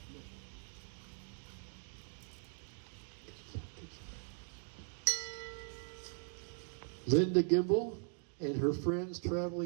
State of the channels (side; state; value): left; silent; 51 dB below the other